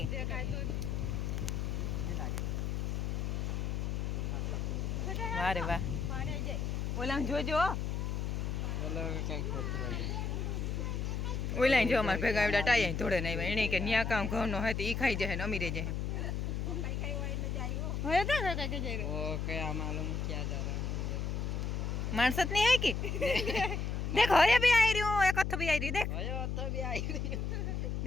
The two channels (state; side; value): noise; left; hum, 1 dB below the sound